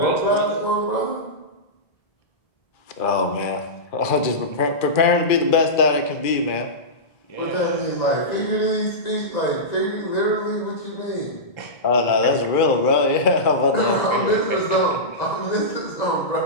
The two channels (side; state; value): right; late; 2.4 ms